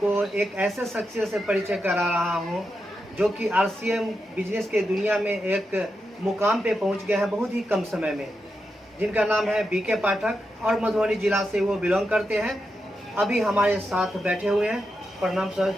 एक ऐसे शख्सियत से परिचय करा रहा हूं जो कि आरसीएम बिजनेस के दुनिया में एक मुकाम पे पहुंच गए हैं बहुत ही कम समय में, जिनका नाम है बीके पाठक और मधुबनी जिला से वो बिलोंग करते हैं। अभी हमारे साथ बैठे हुए हैं। प्रणाम सर,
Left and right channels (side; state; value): both; normal; correlation 0.87